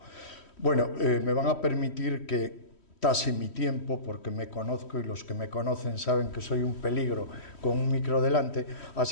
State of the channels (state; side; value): late; right; 3.1 ms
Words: Bueno, me van a permitir que tase mi tiempo, porque me conozco y los que me conocen saben que soy un peligro con un micro delante,